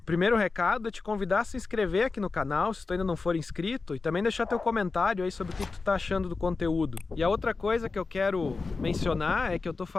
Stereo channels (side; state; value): right; quieter; 4.1 dB